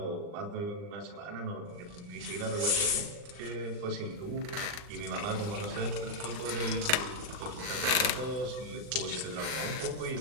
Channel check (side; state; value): left; late; 39 ms